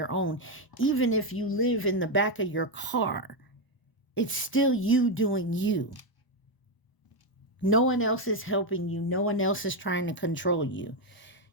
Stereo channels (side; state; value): right; late; 1.0 ms